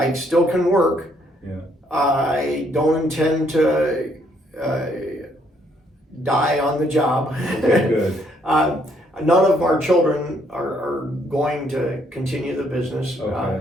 still can work. Yeah. I don't intend to die on the job. Okay, good. None of our children are going to continue the business,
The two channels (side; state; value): both; normal; correlation 0.69